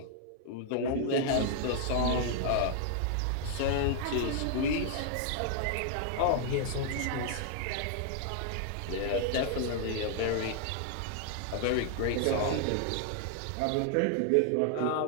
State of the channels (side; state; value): both; different; correlation 0.00